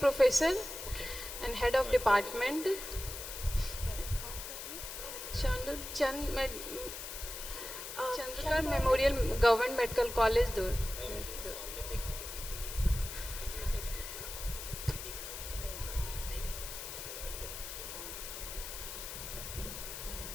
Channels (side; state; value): left; noise; hiss, 8 dB below the sound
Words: and head of department. Chandrakar Memorial Government Medical College, Dur.